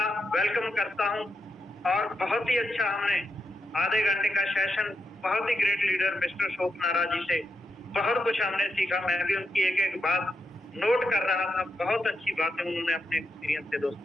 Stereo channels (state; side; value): normal; both; correlation 0.84